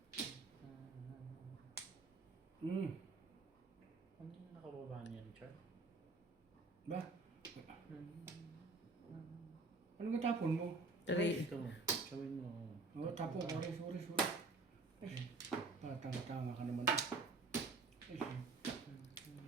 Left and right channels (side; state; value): left; quieter; 3.6 dB